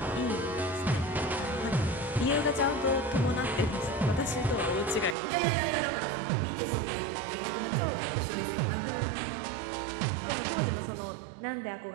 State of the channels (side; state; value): left; drops out; at 5.2 s